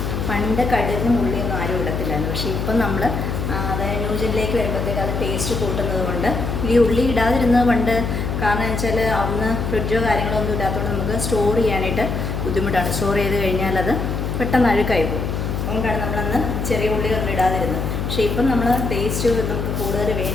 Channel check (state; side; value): noise; left; hum, 2 dB below the sound